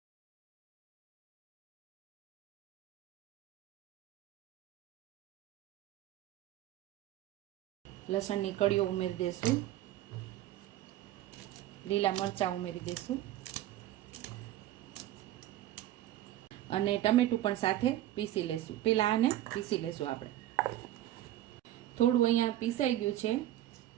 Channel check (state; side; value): quieter; left; 13.7 dB